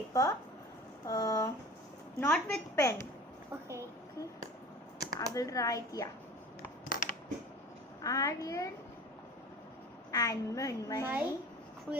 not with pen. Okay. I will write, yeah, Aryan and My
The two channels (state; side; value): normal; both; correlation 0.40